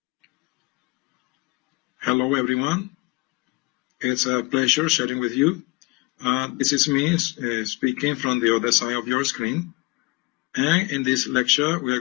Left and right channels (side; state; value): right; quieter; 25.0 dB